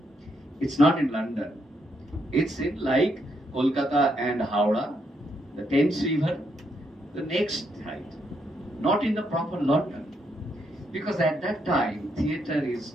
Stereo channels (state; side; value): normal; both; correlation 0.77